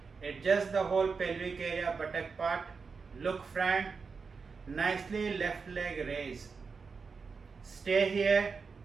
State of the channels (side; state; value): left; quieter; 5.1 dB